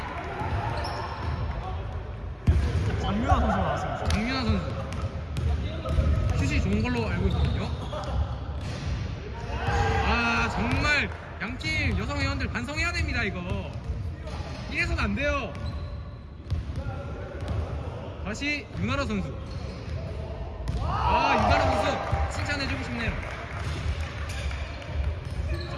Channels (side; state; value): both; identical; correlation 1.00